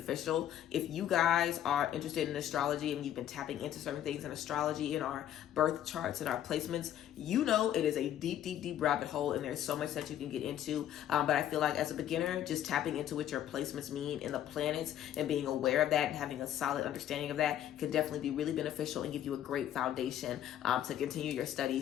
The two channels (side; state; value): right; quieter; 11.2 dB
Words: If you guys are interested in astrology and you've been tapping into certain things in astrology in our birth charts and our placements, it is a deep, deep, deep rabbit hole, and there's so much that you can get into. But I feel like as a beginner, just tapping into what your placements mean in the planets and being aware of that and having a solid understanding of that can definitely be really beneficial and give you a great foundation to continue your